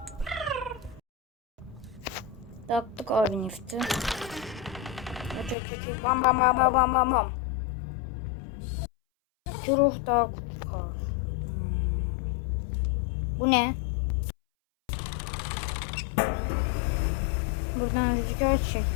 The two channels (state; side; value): drops out; right; at 5.6 s